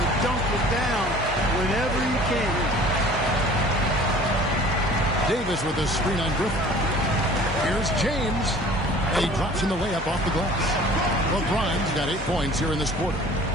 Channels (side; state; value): both; normal; correlation 0.48